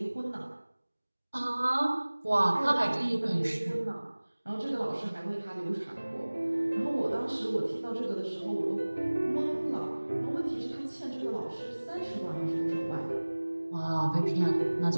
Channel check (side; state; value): both; inverted; correlation -1.00